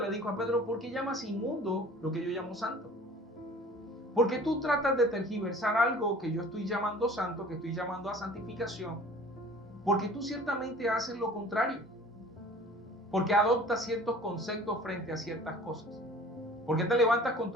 dijo a Pedro, ¿por qué llamas inmundo lo que yo llamo santo? ¿Por qué tú tratas de tergiversar algo que yo estoy llamando santo, que estoy llamando a santificación? Porque tú ciertamente haces lo contrario. Porque adoptas ciertos conceptos frente a ciertas cosas. ¿Por qué te levantas con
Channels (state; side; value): normal; both; correlation 0.47